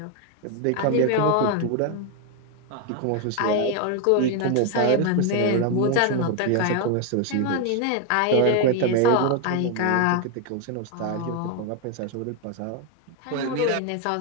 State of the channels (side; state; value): both; different; correlation 0.01